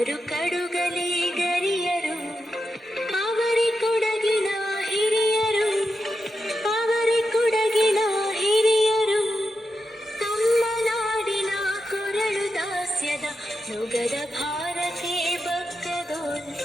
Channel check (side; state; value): both; normal; correlation 0.88